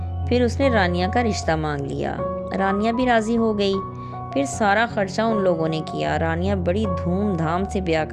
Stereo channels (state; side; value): identical; both; correlation 1.00